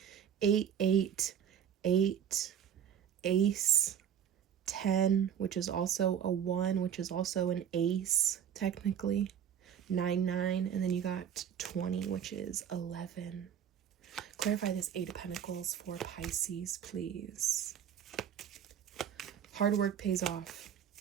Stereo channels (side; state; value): left; quieter; 8.9 dB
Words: 8, 8, 8, Ace, 10, which is also a 1, which is also an ace, technically. 9, 9, and then you got 20, which is 11. Clarify this 8 of Pentacles for Pisces, please. Hard work pays off.